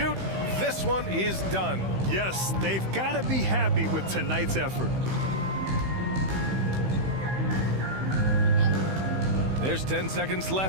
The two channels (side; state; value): left; late; 16 ms